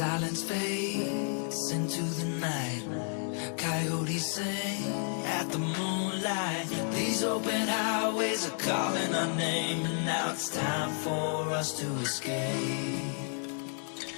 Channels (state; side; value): silent; right; 57 dB below the other